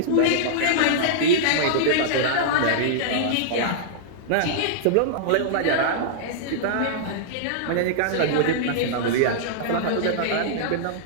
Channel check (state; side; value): different; both; correlation -0.02